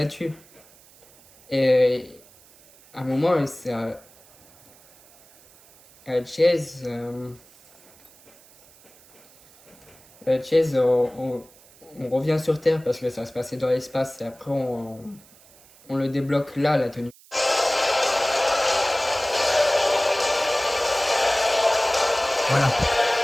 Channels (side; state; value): right; noise; hiss, 26 dB below the sound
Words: Et à un moment, c'est à Chase, on revient sur Terre parce que ça se passait dans l'espace et après on le débloque là, la tenue. Voilà.